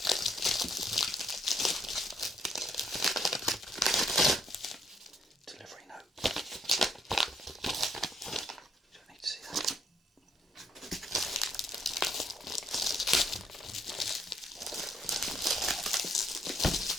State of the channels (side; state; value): both; normal; correlation 0.69